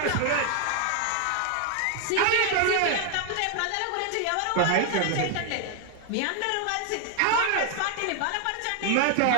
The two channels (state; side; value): different; both; correlation 0.00